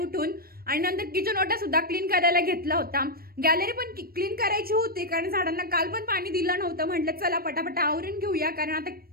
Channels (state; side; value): late; left; 0.44 ms